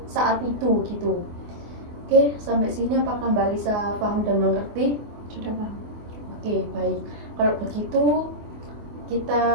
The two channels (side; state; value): left; late; 24 ms